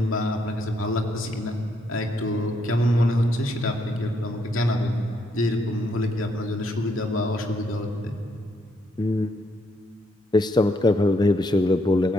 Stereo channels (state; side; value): normal; both; correlation 0.74